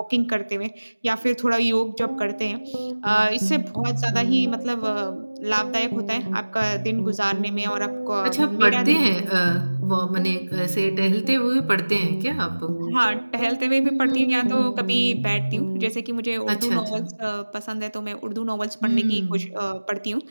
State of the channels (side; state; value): both; inverted; correlation -1.00